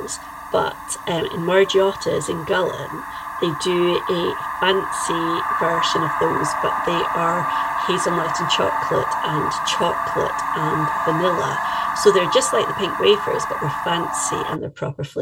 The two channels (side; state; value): both; identical; correlation 1.00